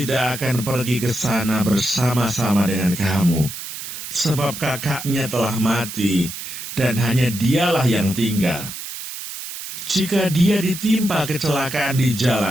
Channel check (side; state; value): right; noise; hiss, 9 dB below the sound